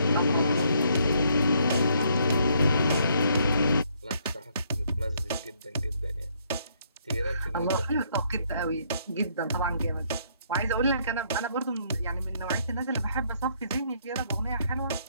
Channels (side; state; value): both; inverted; correlation -0.69